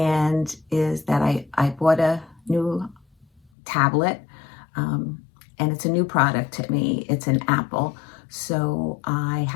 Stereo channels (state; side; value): drops out; right; at 3.5 s